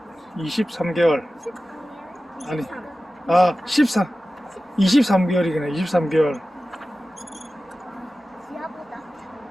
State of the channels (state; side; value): normal; both; correlation 0.95